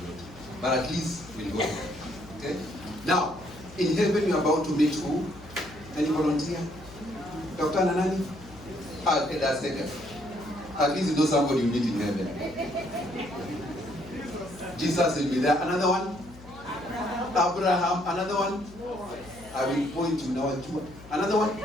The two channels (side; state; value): left; noise; hum, 19 dB below the sound